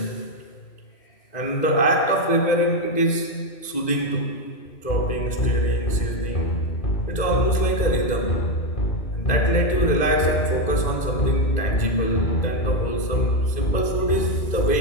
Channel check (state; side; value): late; right; 2.0 ms